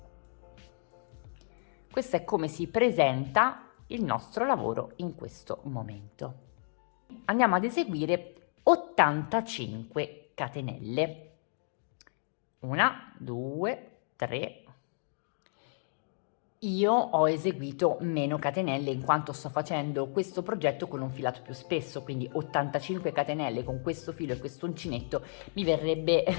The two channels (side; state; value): right; silent; digital silence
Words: Questo è come si presenta il nostro lavoro in questo momento. Andiamo ad eseguire 85 catenelle. 1, 2, 3, Io ho eseguito meno catenelle in quanto sto facendo questo progetto con un filato più spesso, quindi 85 catenelle con questo filo e questo uncinetto mi verrebbe